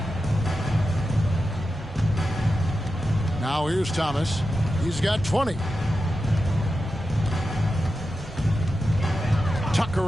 Now here's Thomas. He's got 20.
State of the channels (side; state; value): both; normal; correlation 0.90